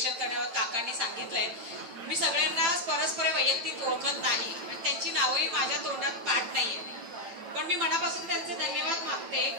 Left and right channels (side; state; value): left; late; 8.8 ms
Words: करण्यावर काकांनी सांगितलंय, मी सगळ्यांना परस्पर वैयक्तिक ओळखत नाही आणि त्यांची नावही माझ्या तोंडात पाठ नाहीये. पण मी मनापासून त्यांचे धन्यवाद मागते.